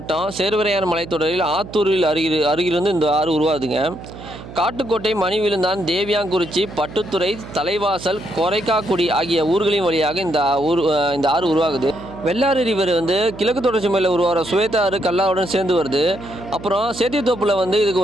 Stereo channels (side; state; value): right; noise; hum, 14 dB below the sound